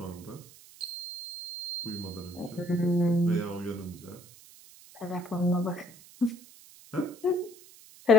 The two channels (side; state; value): right; noise; hiss, 21 dB below the sound